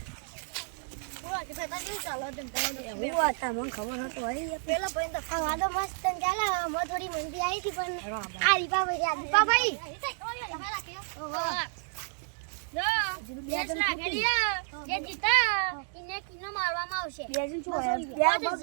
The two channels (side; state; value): left; silent; 57 dB below the other